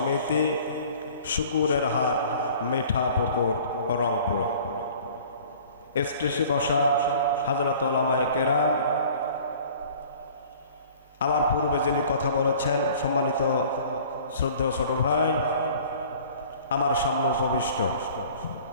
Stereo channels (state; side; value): inverted; both; correlation -0.48